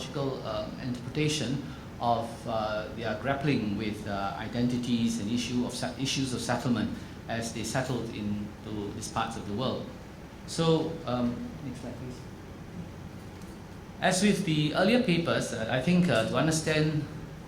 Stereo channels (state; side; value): identical; both; correlation 1.00